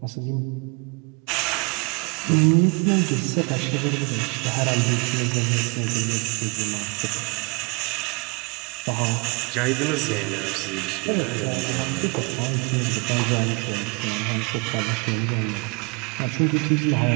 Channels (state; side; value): quieter; left; 31.1 dB